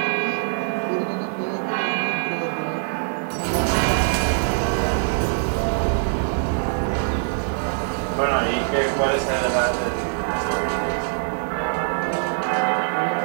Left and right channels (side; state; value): left; silent; digital silence